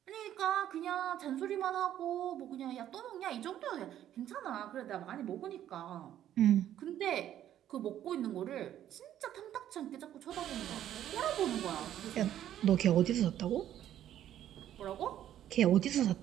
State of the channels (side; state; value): left; quieter; 11.4 dB